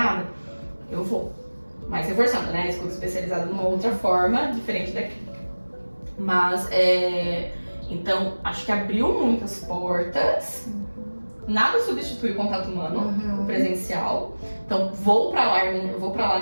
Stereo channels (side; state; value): both; inverted; correlation -1.00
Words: eu vou. Mas reforçando, né? A escuta especializada de uma outra forma, diferente da clínica. Mas, então, acho que abriu muitas portas. Nada substitui o contato humano, o presencial. Então, vou pra lá